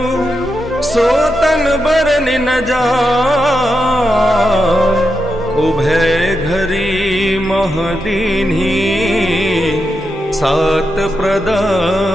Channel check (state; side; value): normal; both; correlation 0.86